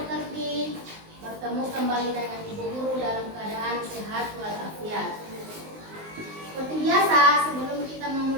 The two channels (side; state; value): left; late; 19 ms